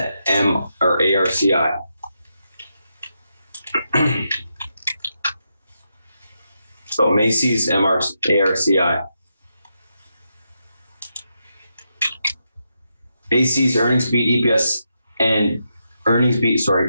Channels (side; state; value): both; inverted; correlation -0.84